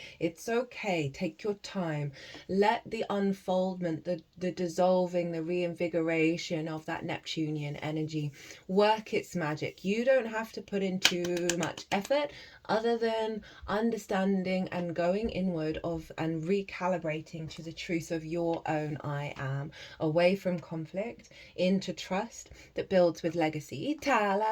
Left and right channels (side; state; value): both; identical; correlation 1.00